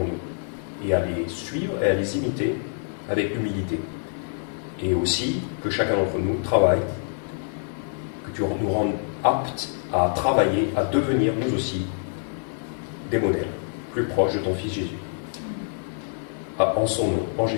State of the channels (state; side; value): silent; right; digital silence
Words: nous, et à les suivre et à les imiter avec humilité. Et aussi que chacun d'entre nous travaille, que tu nous rendes aptes à travailler, à devenir nous aussi des modèles plus proches de ton Fils Jésus. En son nom, en